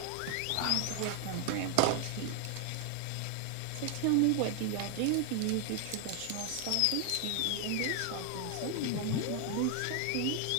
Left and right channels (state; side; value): different; both; correlation 0.00